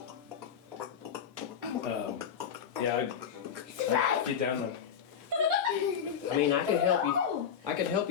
yeah, I get down there. I mean, I could help you. I could help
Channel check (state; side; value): quieter; right; 8.0 dB